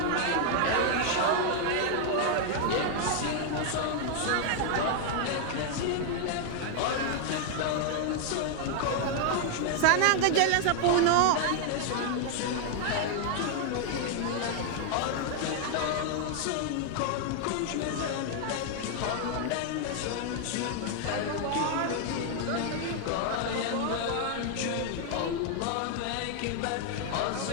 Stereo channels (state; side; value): different; both; correlation 0.00